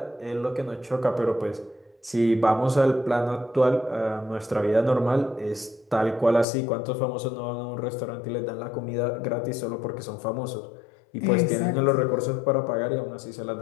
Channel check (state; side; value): drops out; right; at 6.5 s